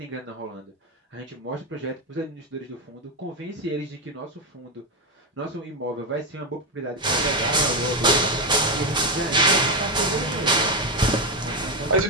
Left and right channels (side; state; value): both; normal; correlation 0.09